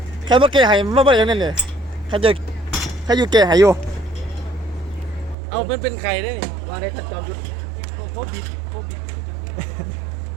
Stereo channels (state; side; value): drops out; left; at 5.4 s